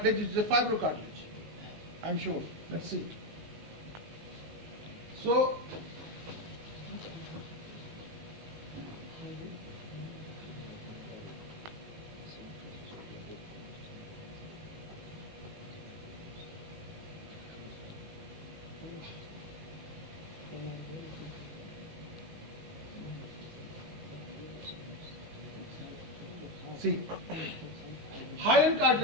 which is a fibrocartilage. I'm sure. Let's see. So, see, hyaline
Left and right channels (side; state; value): left; late; 19 ms